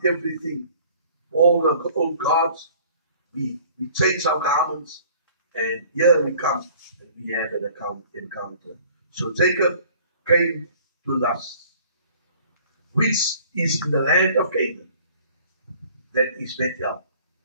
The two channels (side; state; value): both; inverted; correlation -0.52